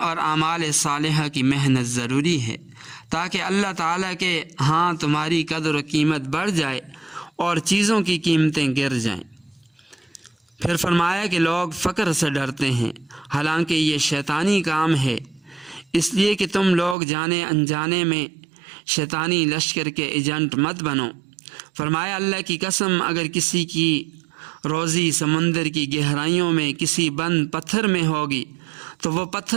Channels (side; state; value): left; drops out; at 16.9 s